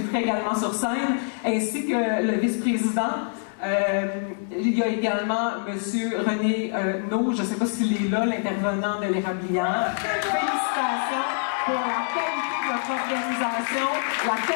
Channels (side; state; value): right; silent; digital silence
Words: également sur scène, ainsi que le vice-président. Il y a également M. René No, je ne sais pas s'il est là, l'intervenant de l'Érablière. Félicitations pour la qualité de votre organisation, la